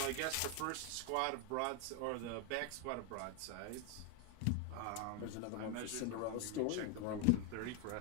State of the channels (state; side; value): different; both; correlation 0.01